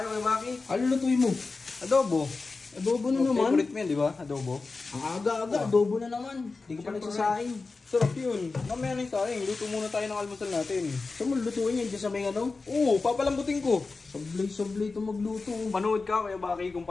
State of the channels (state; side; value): quieter; right; 4.0 dB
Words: Kuya Baki? Ano lutuin mo? Adobo. Adobo na naman. Favorite mo yan, di ba? Adobo. Ang aga-aga, adobo na naman. Hindi ka pa nagsasaing. Sarap yun. Mamaya na yung saing. Luto muna tayo ng almusal natin. Saan mo lutuin yan? Diyan sa may ano? Oo, papalambutin ko. Sablay ito magluto. Panood ka Kuya Baki kung